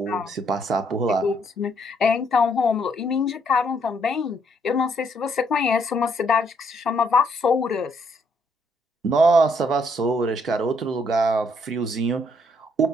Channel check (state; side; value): normal; both; correlation 0.70